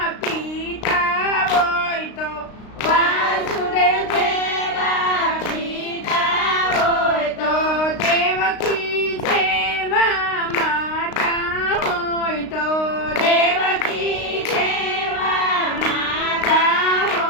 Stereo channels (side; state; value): right; late; 35 ms